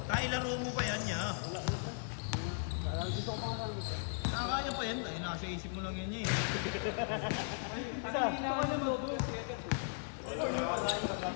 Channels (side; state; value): right; silent; 53 dB below the other